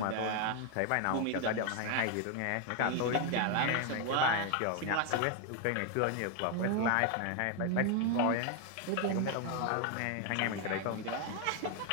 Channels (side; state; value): both; different; correlation 0.01